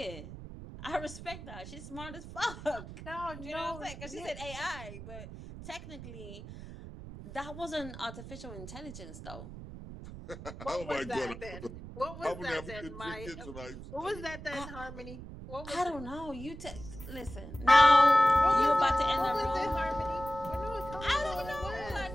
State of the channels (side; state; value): right; noise; rumble, 12 dB below the sound